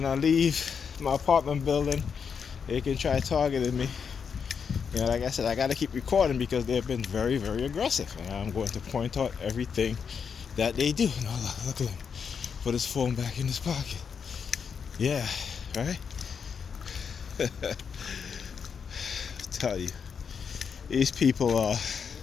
I leave my apartment building, they can try targeting me. You know, like I said, I gotta keep recording because they've been very, very aggressive. And I'm going to point out everything that they do. No, look at him. Put his phone back in his pocket. Yeah, right? Tell you, these people are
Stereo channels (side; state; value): right; quieter; 6.5 dB